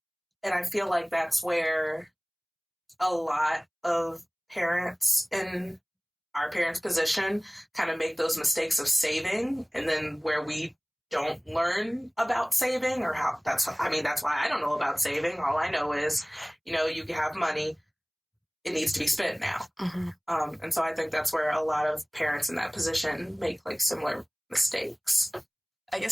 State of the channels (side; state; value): both; identical; correlation 1.00